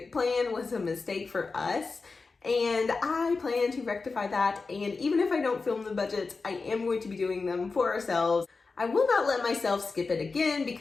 plan was a mistake for us. And I plan to rectify that. And even if I don't film the budgets, I am going to be doing them for ourselves. I will not let myself skip it again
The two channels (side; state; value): right; quieter; 4.2 dB